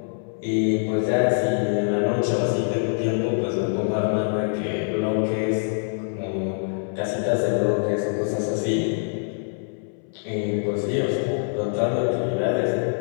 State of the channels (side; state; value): right; silent; 62 dB below the other